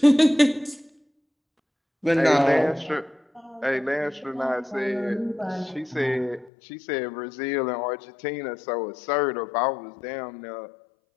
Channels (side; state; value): right; drops out; at 6.5 s